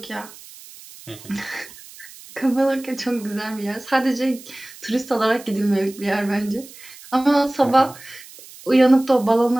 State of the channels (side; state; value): right; noise; hiss, 19 dB below the sound